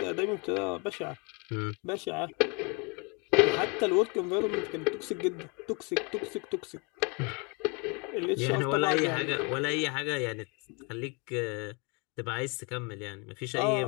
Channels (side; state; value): right; quieter; 31.9 dB